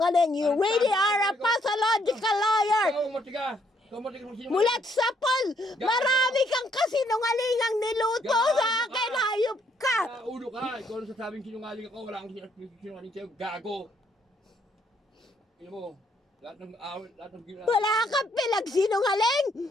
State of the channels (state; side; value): normal; both; correlation 0.70